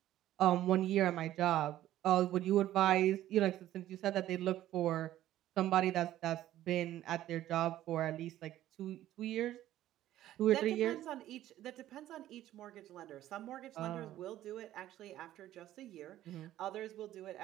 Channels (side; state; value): left; quieter; 13.4 dB